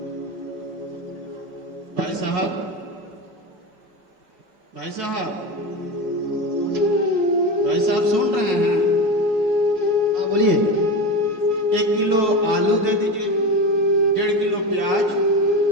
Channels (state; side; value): late; left; 5.1 ms